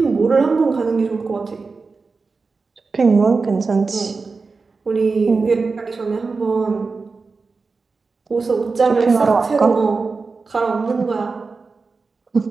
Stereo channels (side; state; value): left; quieter; 4.3 dB